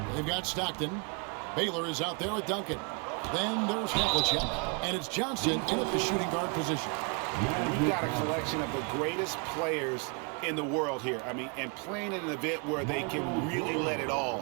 They've got Stockton. Baylor is out there with Duncan. Then there's Havlicek, and it's Johnson in at the shooting guard position. We've got a collection of the greatest players in the world here. I mean, and playing in an event where they can really let it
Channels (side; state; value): left; quieter; 34.0 dB